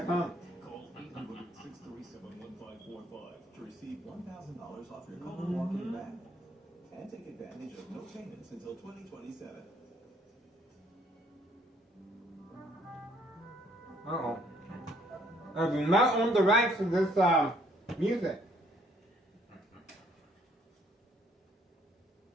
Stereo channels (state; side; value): normal; both; correlation 0.65